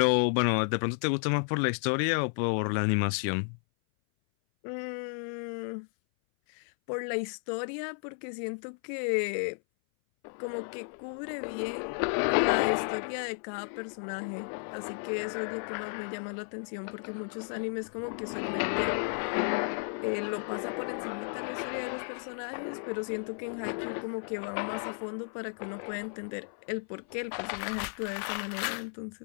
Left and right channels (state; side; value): silent; right; 56 dB below the other